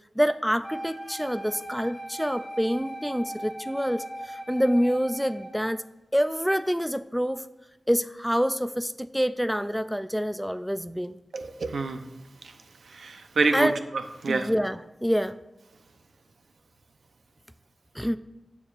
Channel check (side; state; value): both; normal; correlation 0.98